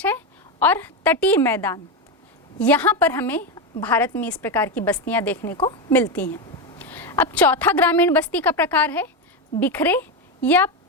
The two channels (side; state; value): both; normal; correlation 0.11